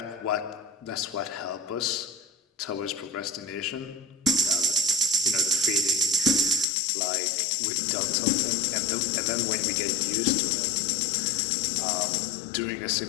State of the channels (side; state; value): right; drops out; at 6.7 s